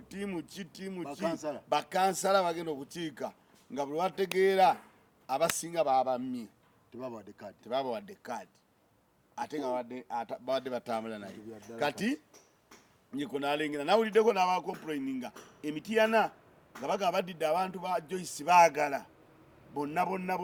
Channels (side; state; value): both; identical; correlation 1.00